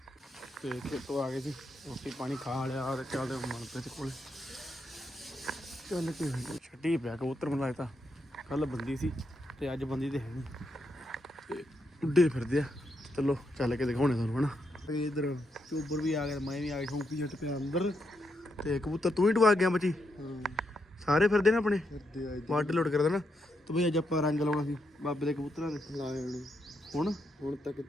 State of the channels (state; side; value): normal; both; correlation 0.81